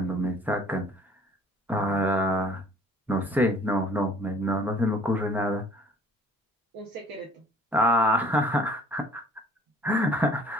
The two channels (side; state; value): both; normal; correlation 0.53